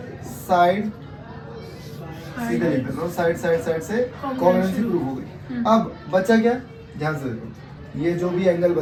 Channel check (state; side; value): identical; both; correlation 1.00